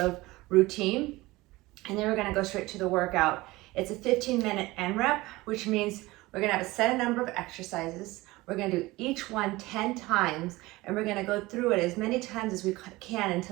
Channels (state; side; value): quieter; left; 20.2 dB